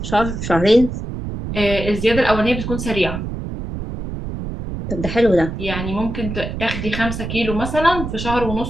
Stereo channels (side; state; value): right; noise; rumble, 6 dB below the sound